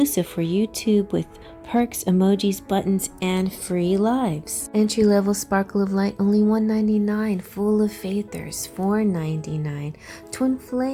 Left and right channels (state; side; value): identical; both; correlation 1.00